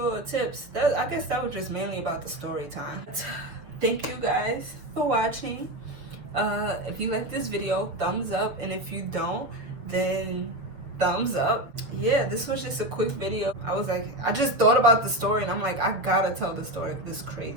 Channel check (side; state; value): left; late; 7.1 ms